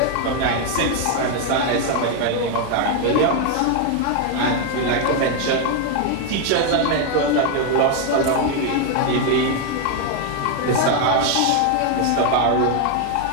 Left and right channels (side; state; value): both; different; correlation 0.01